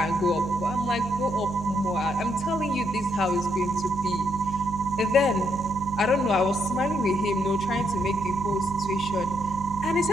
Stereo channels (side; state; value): both; normal; correlation 0.75